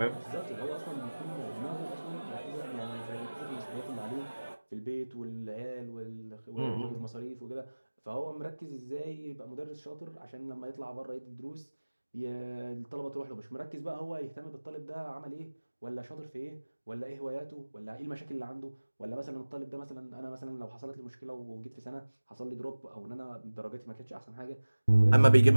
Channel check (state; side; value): inverted; both; correlation -1.00